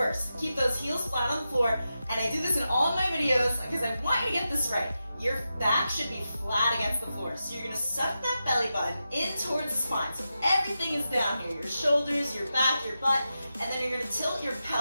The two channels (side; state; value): both; inverted; correlation -0.90